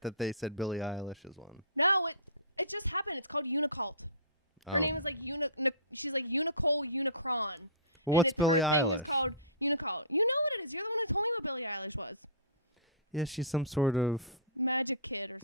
they said Billie Eilish is one. No, it just happened. It's called Unicult. Her name is like she's like Unicole Unicron. Well, what's Billie Eilish? Her thing is called Unicult. You know what it is. You're the one who told me what Billie Eilish was. Yeah, she's some sort of magic kid or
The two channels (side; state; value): both; inverted; correlation -0.33